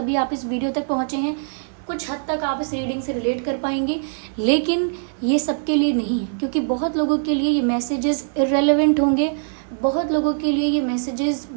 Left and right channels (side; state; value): left; silent; digital silence